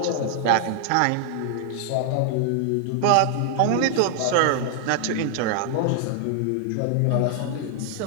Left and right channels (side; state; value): both; different; correlation 0.00